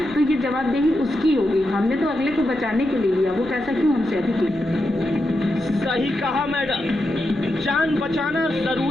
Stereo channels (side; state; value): left; noise; rumble, 23 dB below the sound